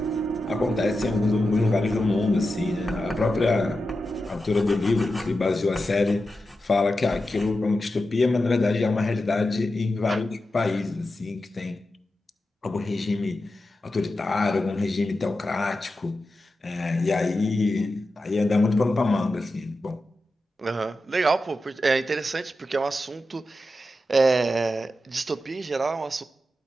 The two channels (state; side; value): normal; both; correlation 0.91